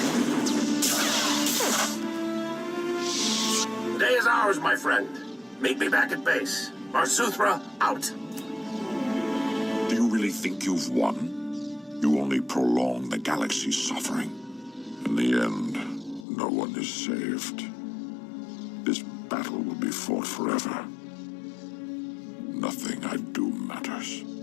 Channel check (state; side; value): drops out; right; at 16.2 s